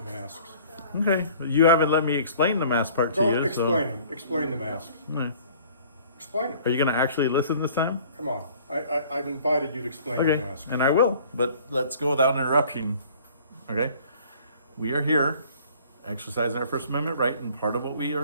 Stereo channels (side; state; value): both; inverted; correlation -0.52